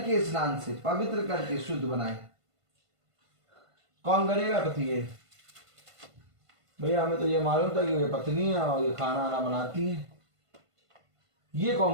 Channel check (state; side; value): late; left; 1.5 ms